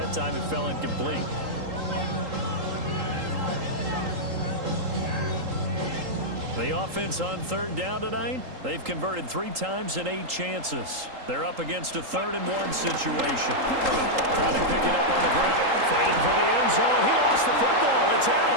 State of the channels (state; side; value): late; left; 3.8 ms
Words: time it fell incomplete. The offense on third down tonight, they've converted 3 times in 8 chances. They're up against a 3rd-and-1 situation. Trying to pick it up on the ground, fighting for the end zone. He lost the football. It's out.